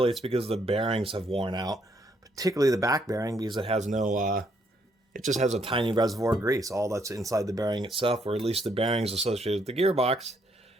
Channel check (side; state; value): both; normal; correlation 0.71